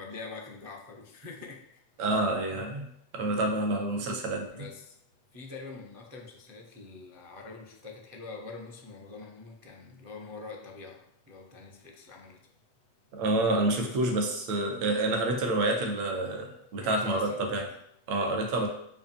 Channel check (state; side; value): late; left; 8.2 ms